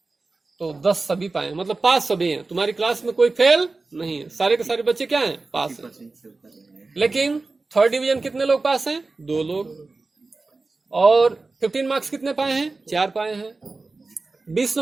तो 10 सभी पाए, मतलब पास सभी हैं। तुम्हारी क्लास में कोई फेल नहीं है, सारे के सारे बच्चे क्या हैं? पास हैं। लेकिन थर्ड डिवीजन कितने लोग पास हैं? 2 लोग। और 15 मार्क्स कितने पाए हैं? 4 पाए हैं। 20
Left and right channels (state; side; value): quieter; left; 3.6 dB